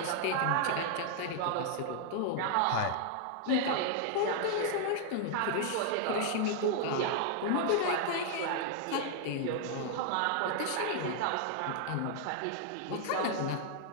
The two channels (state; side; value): different; both; correlation 0.00